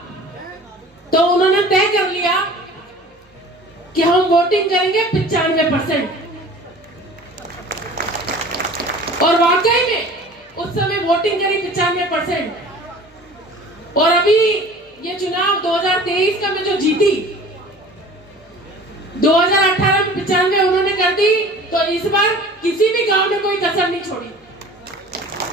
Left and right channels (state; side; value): normal; both; correlation 0.43